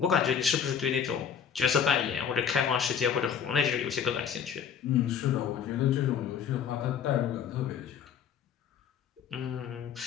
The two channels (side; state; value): right; quieter; 7.8 dB